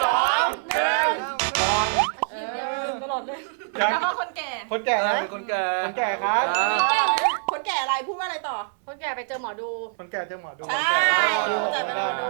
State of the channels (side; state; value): left; silent; 60 dB below the other